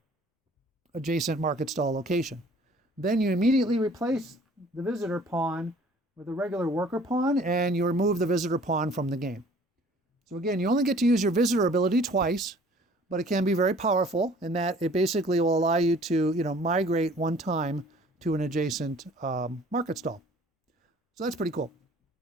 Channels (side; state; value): both; normal; correlation 0.53